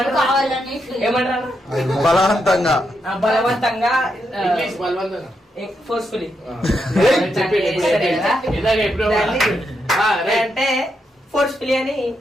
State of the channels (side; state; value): both; normal; correlation 0.82